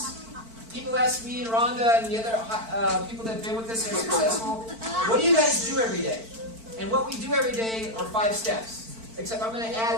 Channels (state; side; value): late; left; 4.5 ms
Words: People ask me and Rhonda and the other people that have been with us and are successful, what do you guys do every day? And what we do every day are 5 steps. Except I'm going to